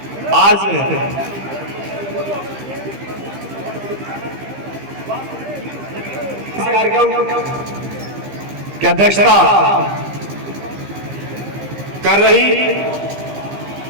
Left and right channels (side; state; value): left; late; 15 ms